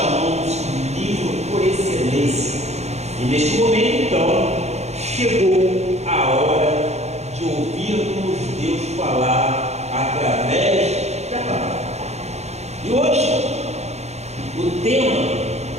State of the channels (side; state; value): left; late; 0.32 ms